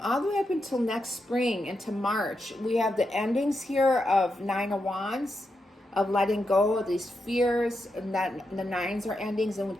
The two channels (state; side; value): normal; both; correlation 0.85